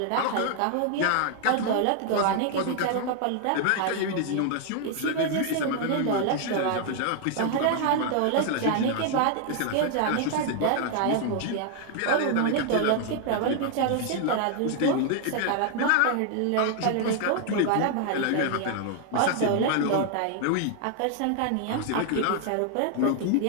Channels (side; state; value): both; different; correlation 0.00